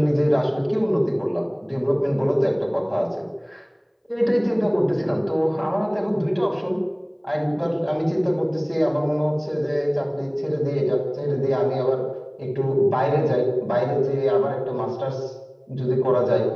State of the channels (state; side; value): identical; both; correlation 1.00